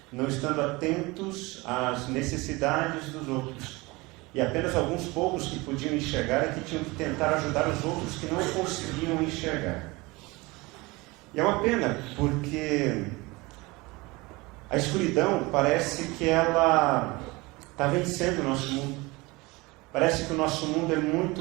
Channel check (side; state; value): left; quieter; 23.4 dB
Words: não estando atentos às necessidades dos outros. E apenas alguns poucos que podiam enxergar é que tinham que tentar ajudar os outros que não conseguiam enxergar. E é uma pena, porque a escuridão parece que ela está vencendo o nosso mundo. Parece que o nosso mundo é